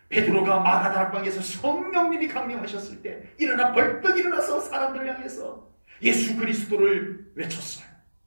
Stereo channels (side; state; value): both; inverted; correlation -1.00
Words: 베드로가 마가다락방에서 성령님이 강림하셨을 때 일어나 벌떡 일어나서 사람들을 향해서 예수 그리스도를 외쳤어요.